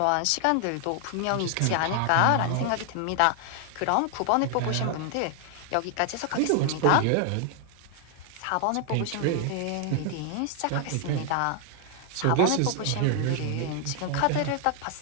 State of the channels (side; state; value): both; different; correlation 0.00